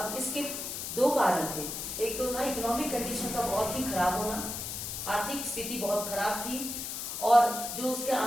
इसके दो कारण थे, एक तो था इकोनॉमिक कंडीशन का बहुत ही खराब होना, आर्थिक स्थिति बहुत खराब थी और जो उसके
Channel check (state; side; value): noise; left; hiss, 5 dB below the sound